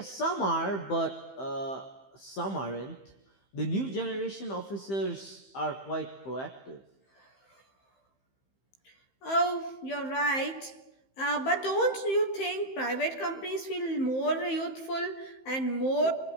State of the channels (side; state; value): right; late; 15 ms